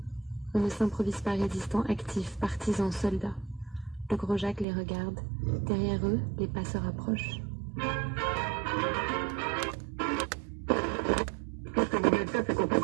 On ne s'improvise pas résistant, actif, partisan, soldat. Le gros Jacques les regarde. Derrière eux, les pas se rapprochent. Ce que vous venez de faire, c'est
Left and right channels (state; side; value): drops out; left; at 4.7 s